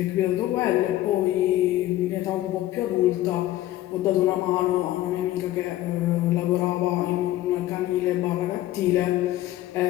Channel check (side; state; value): right; quieter; 14.9 dB